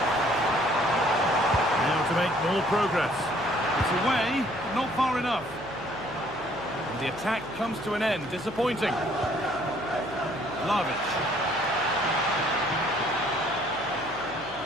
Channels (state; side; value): noise; left; hum, 22 dB below the sound